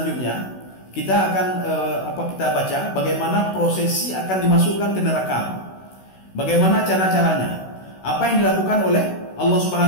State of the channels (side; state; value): right; late; 16 ms